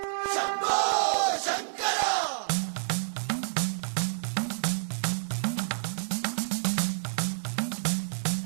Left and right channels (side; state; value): left; silent; digital silence